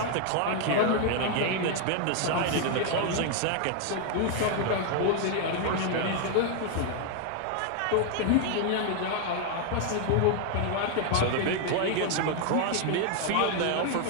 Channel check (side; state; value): both; different; correlation 0.00